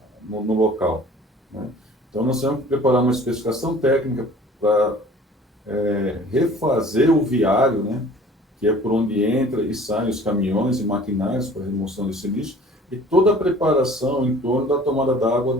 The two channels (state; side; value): normal; both; correlation 0.49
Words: no local, né? Então, nós tivemos que preparar uma especificação técnica para refazer o viário, né, que é por onde entra e saem os caminhões e maquinários para a remoção desse lixo, e toda a preparação em torno da tomada d'água